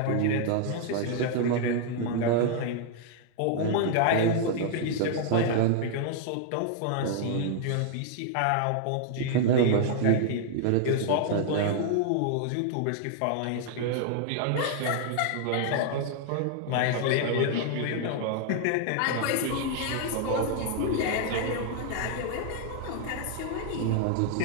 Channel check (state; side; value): different; both; correlation 0.00